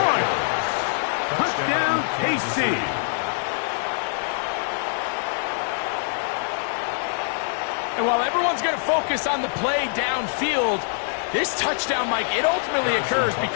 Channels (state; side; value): silent; right; digital silence